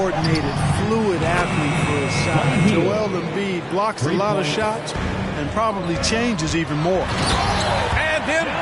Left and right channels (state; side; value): identical; both; correlation 1.00